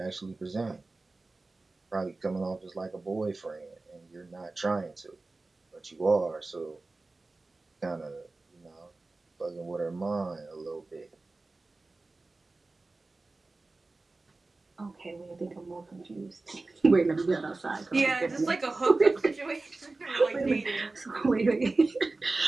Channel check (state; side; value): quieter; left; 3.4 dB